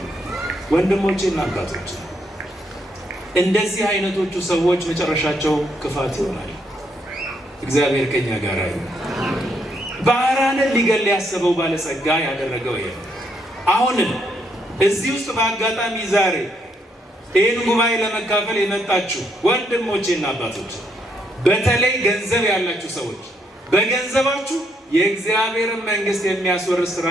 ወንድሞቼና አባቶቼ እንደዚህ አይነቶቹ ሰዎች መጨረሻቸው ክፋት ይሆናል። እግዚአብሔር ከኛ ጋር ይሁን። ባህራንን ሊገል ያሰበው ባለጸጋ ያደረገው ይሄ። አሁንም እዚህ ውስጥ በአጋጣሚ ዛሬ ይህን ጉባኤ ለመካፈል የመጣችሁ ወንድሞቼና አባቶች፣ በተለይ ገንዘብ ያላችሁ ሰዎች በገንዘባችሁ የእግዚአብሔርን መንግስት የሚያስወርስ ስራ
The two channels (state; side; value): normal; both; correlation 0.74